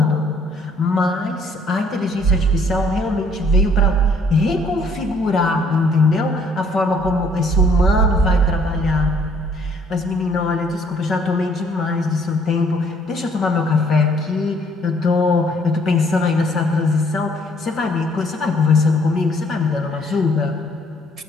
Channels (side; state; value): both; normal; correlation 0.63